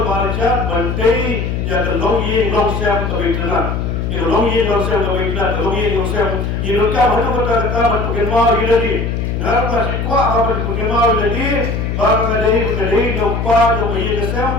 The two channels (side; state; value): left; noise; hum, 2 dB below the sound